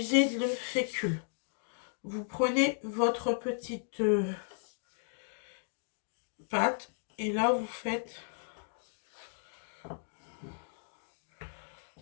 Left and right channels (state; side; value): silent; right; digital silence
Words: de fécule. Vous prenez votre petite pâte et là,